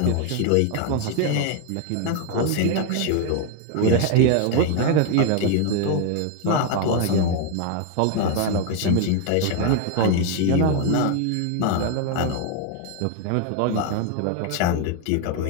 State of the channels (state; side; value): different; both; correlation 0.01